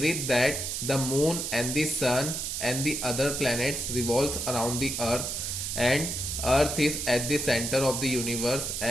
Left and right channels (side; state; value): right; noise; hiss, 3 dB below the sound